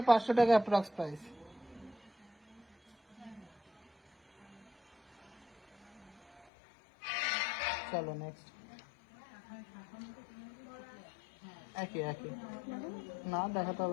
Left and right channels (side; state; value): right; drops out; at 6.5 s